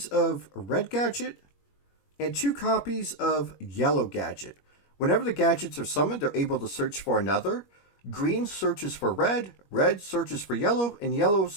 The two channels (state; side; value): late; right; 21 ms